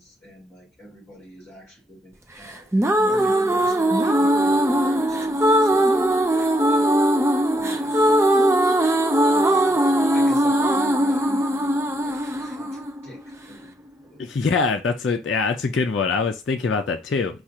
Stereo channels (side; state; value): both; normal; correlation 0.73